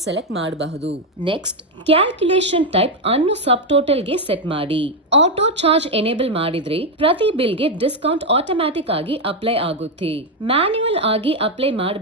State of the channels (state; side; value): normal; both; correlation 0.05